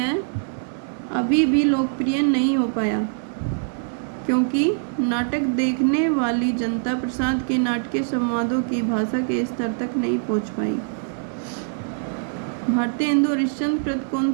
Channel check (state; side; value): silent; left; digital silence